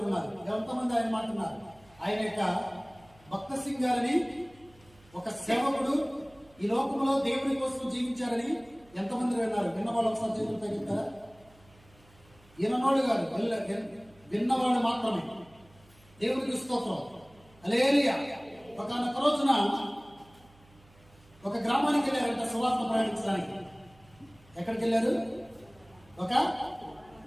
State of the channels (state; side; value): noise; right; hum, 28 dB below the sound